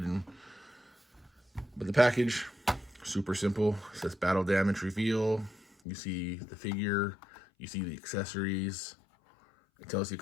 But the package, super simple. It says battle damage reveal. You see the figure. You see the accessories. It tells you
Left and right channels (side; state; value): right; drops out; at 5.7 s